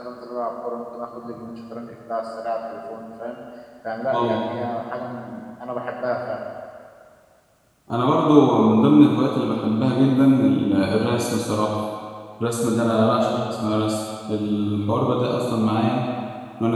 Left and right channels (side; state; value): both; identical; correlation 1.00